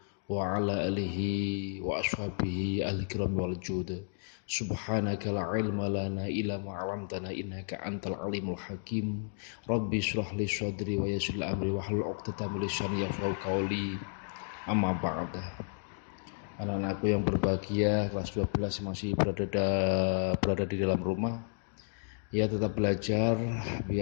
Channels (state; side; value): silent; right; digital silence